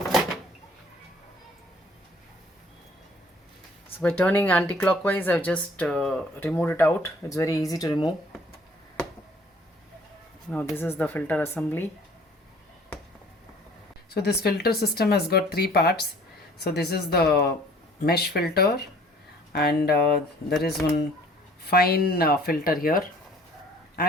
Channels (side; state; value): both; normal; correlation 0.54